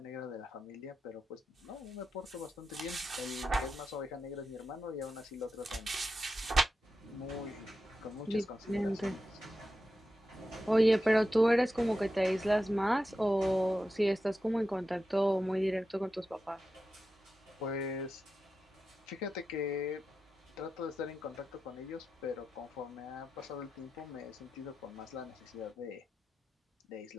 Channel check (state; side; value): normal; both; correlation 0.90